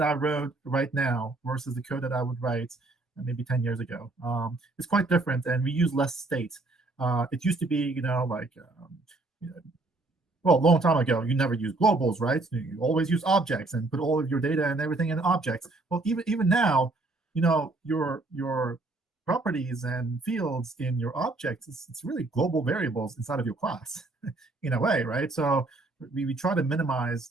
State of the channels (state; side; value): quieter; left; 3.1 dB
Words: I wrote right now versus the code that I would write maybe 10 years ago. It's quite different, and we use less state. It used to be, well, a long time ago, you never use globals, right? You always use objects and put all of your data and everything in objects. Well, even now, your properties and fields in your objects, it's really global variables inside of your class in a way, right? So we try to minimize